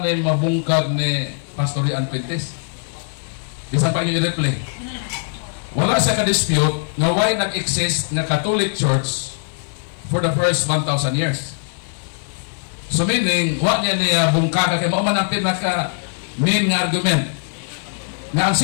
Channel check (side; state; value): right; silent; digital silence